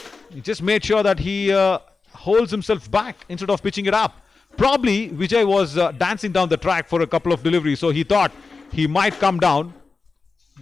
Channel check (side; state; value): right; quieter; 4.3 dB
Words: He just made sure that he holds himself back instead of pitching it up. Probably Vijay was dancing down the track for a couple of deliveries, so he thought he might come down